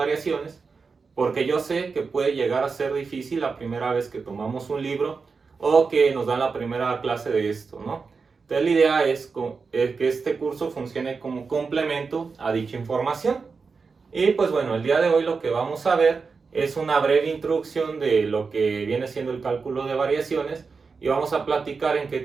porque yo sé que puede llegar a ser difícil la primera vez que tomamos un libro o que nos dan la primera clase de esto, ¿no? Entonces la idea es que este curso funcione como complemento a dicha información. Y pues bueno, el día de hoy lo que vamos a ver es una breve introducción de lo que viene siendo el cálculo de variaciones y vamos a platicar en qué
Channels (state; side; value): quieter; left; 4.9 dB